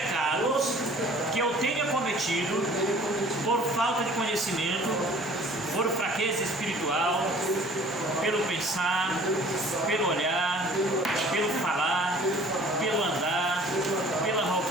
que eu tenha cometido por falta de conhecimento, por fraqueza espiritual, pelo pensar, pelo olhar, pelo falar, pelo andar, pela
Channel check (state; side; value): normal; both; correlation 0.50